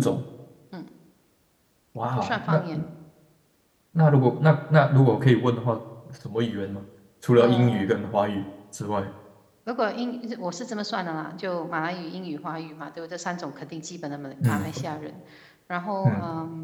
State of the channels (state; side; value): identical; both; correlation 1.00